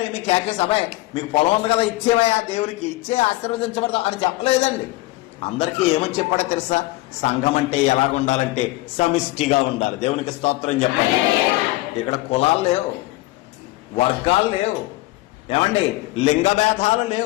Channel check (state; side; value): quieter; right; 19.2 dB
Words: ఏమి కేకేసి, అబ్బాయి మీకు పొలం ఉంది కదా ఇచ్చేవయా, దేవునికి ఇచ్చే ఆశీర్వదించబడతాం అని చెప్పలేదండి. అందరికీ ఏమని చెప్పాడో తెలుసా? సంఘం అంటే ఎలాగుండాలంటే సమిష్టిగా ఉండాలి. దేవునికి స్తోత్రం చెప్పండి. ఇక్కడ కులాలు లేవు, వర్గాలు లేవు, ఏమండి లింగ భేదాలు